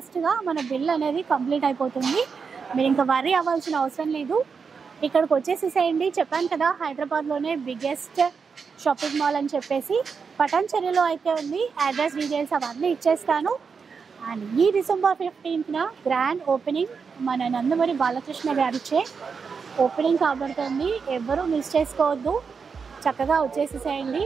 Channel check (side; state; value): left; quieter; 5.6 dB